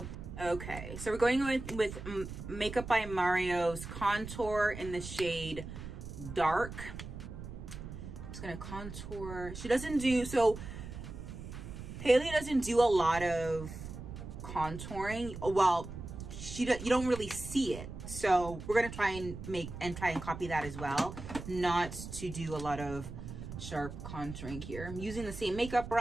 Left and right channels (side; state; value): right; noise; rumble, 10 dB below the sound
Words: Okay, so we're going with Makeup by Mario's contour in the shade Dark. I'm just gonna contour. She doesn't do, so Hailey doesn't do a lot of contouring. Well, you don't really see it. So we're gonna try and copy that as well. Not to do a lot of sharp contouring here. I'm using the same makeup